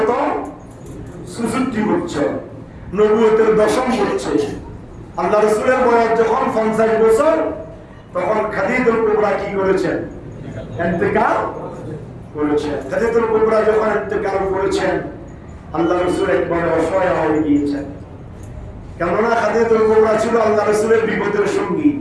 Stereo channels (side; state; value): both; identical; correlation 1.00